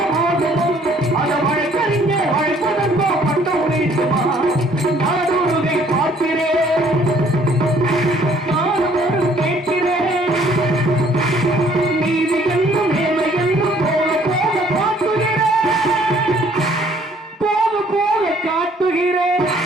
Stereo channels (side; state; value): both; normal; correlation 0.60